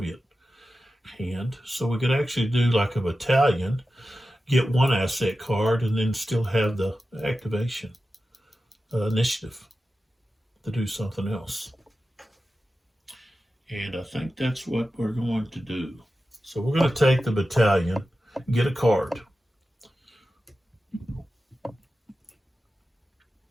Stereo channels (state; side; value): normal; both; correlation 0.93